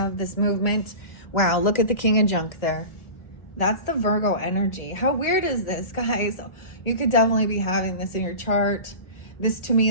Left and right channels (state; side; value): late; right; 1.7 ms